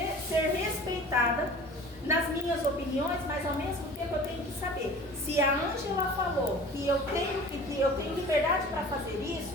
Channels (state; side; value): normal; both; correlation 0.43